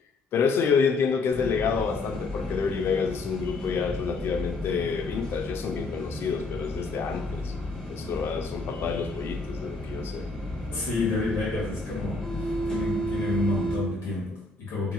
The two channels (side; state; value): right; quieter; 3.7 dB